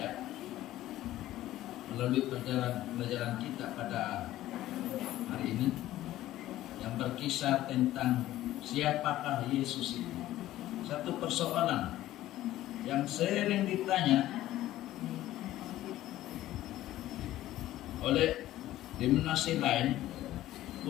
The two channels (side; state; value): right; quieter; 14.6 dB